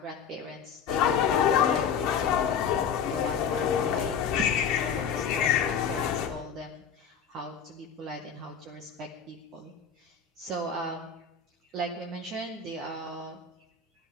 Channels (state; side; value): quieter; right; 6.9 dB